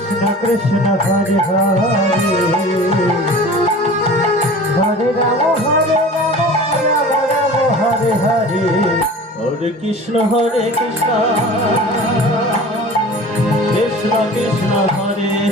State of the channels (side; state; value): both; normal; correlation 0.40